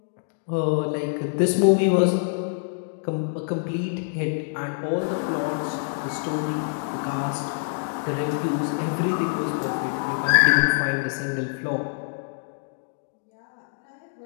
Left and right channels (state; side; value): silent; right; digital silence